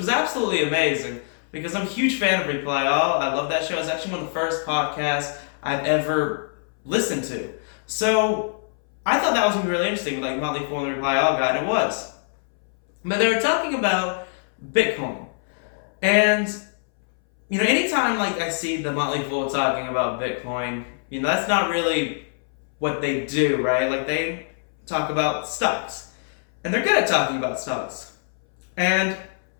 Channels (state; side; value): silent; right; 62 dB below the other